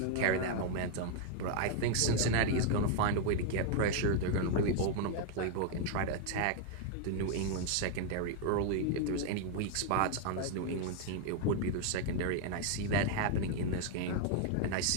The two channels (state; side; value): different; both; correlation 0.00